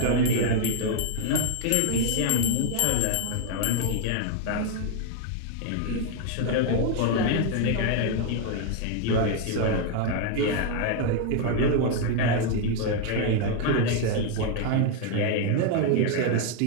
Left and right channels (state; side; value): different; both; correlation 0.00